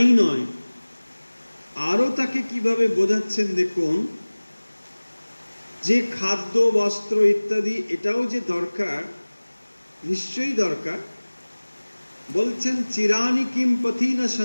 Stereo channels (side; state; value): both; inverted; correlation -1.00